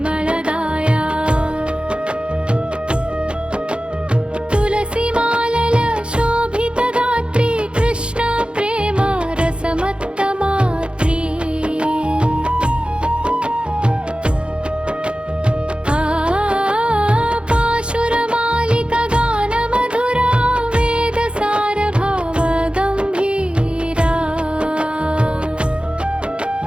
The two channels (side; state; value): left; late; 0.056 ms